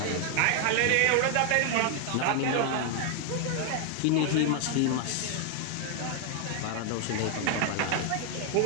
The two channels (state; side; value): different; both; correlation 0.00